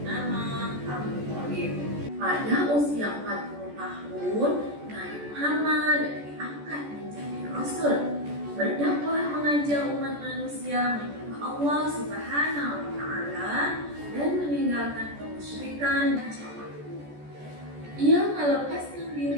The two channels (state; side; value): late; left; 14 ms